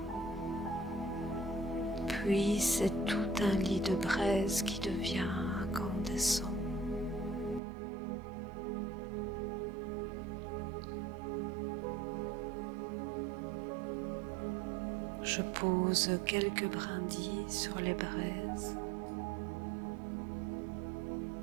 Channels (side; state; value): left; drops out; at 7.6 s